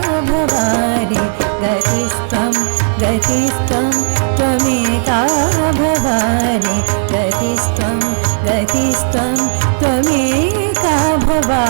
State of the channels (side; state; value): left; silent; digital silence